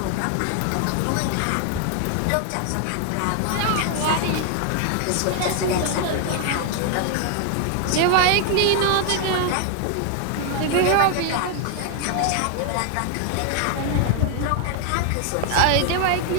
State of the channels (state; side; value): different; both; correlation 0.00